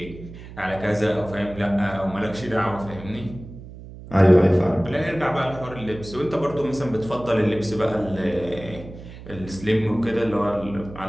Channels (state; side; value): noise; right; hum, 15 dB below the sound